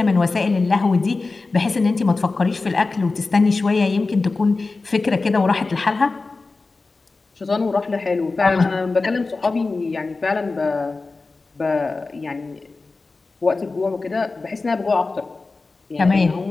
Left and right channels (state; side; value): quieter; right; 3.7 dB